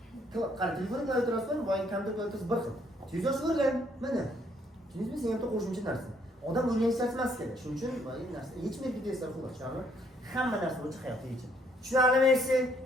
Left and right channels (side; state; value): both; normal; correlation 0.68